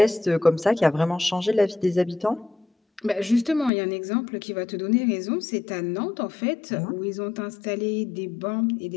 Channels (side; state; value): right; drops out; at 3.7 s